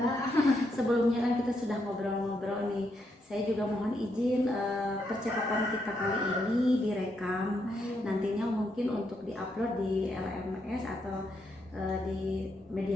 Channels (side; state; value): both; normal; correlation 0.79